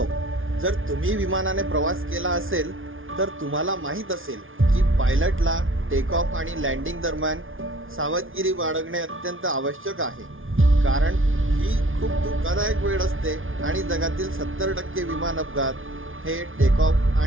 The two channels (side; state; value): left; late; 0.58 ms